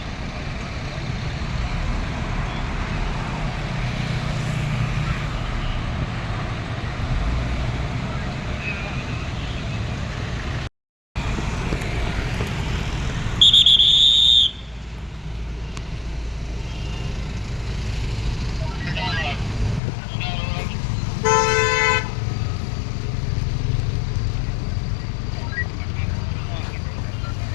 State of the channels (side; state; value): right; drops out; at 19.8 s